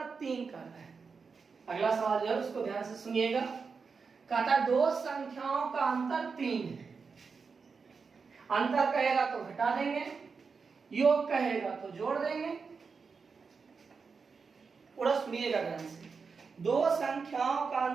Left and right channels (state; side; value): quieter; left; 5.2 dB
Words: 3 कर रहा है। अगला सवाल जो है उसको ध्यान से सुनिएगा। कहता है दो संख्याओं का अंतर 3 है, अंतर कहेगा तो घटा देंगे, योग कहेगा तो जोड़ देंगे। पूरा सुनिएगा ध्यान से। दो संख्याओं का